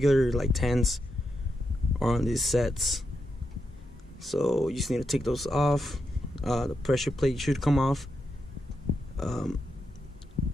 like 10s are on these sets. So you just need to take those off. The pressure plate should come off, and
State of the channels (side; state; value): both; normal; correlation 0.85